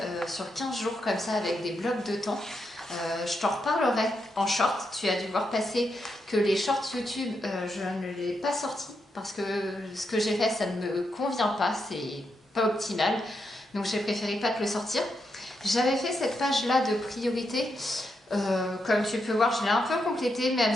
sur 15 jours comme ça avec des blocs de temps. Je t'en reparlerai en short. Tu as dû voir passer que les shorts YouTube, je ne les ai pas sortis parce que ce que j'ai fait, ça ne me convient pas, c'est pas optimal. Donc j'ai préféré pas te le sortir. J'avais fait cette page-là de priorité. Comme tu peux voir, je l'ai un peu complétée, mais elle ne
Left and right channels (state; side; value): normal; both; correlation 0.83